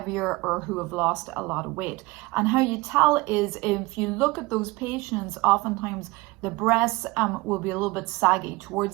or who have lost a lot of weight. And how you tell is, if you look at those patients, oftentimes the breasts will be a little bit saggy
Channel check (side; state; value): left; quieter; 22.7 dB